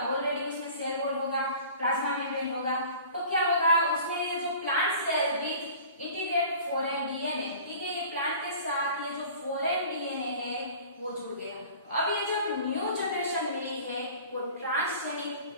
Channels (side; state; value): both; inverted; correlation -0.44